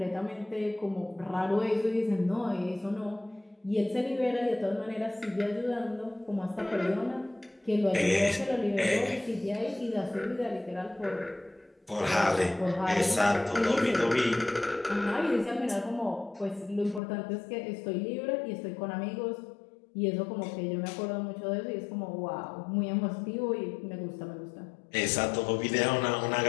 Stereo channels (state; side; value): drops out; right; at 17.0 s